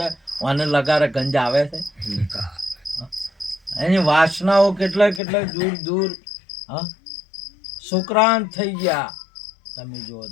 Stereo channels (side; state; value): right; drops out; at 5.2 s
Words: અને લગારે ગંજ આવે છે. એની વાસનાઓ કેટલા દૂર સુક્રાંત થઈ ગયા. તમે જુઓ